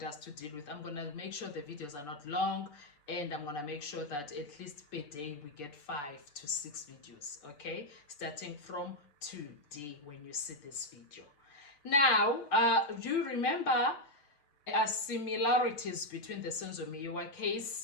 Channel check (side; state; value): right; late; 6.8 ms